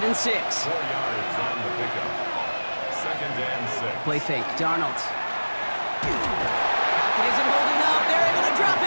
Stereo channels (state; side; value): inverted; both; correlation -1.00